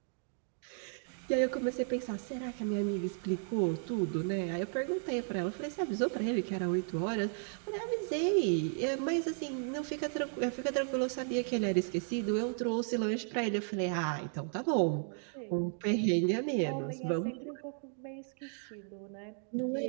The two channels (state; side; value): silent; left; 55 dB below the other